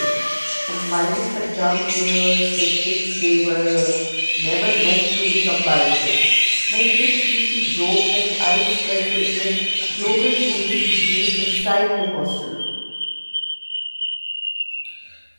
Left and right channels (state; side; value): inverted; both; correlation -1.00